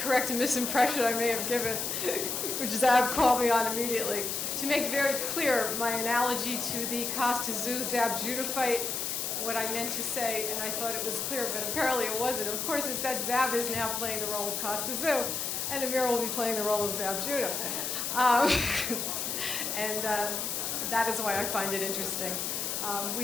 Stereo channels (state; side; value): noise; left; hiss, 2 dB below the sound